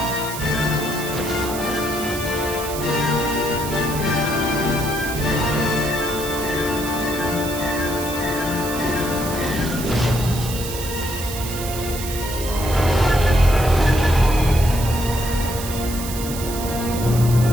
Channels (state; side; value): noise; right; hiss, 9 dB below the sound